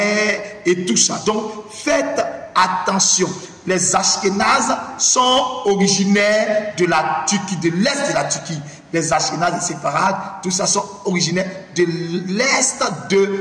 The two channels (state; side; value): identical; both; correlation 1.00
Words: et tout ça. Donc, faites attention. Les Ashkénazes sont originaires de la Turquie, de l'est de la Turquie. Les Ashkénazes, les Séfarades, tout ça sont originaires de l'est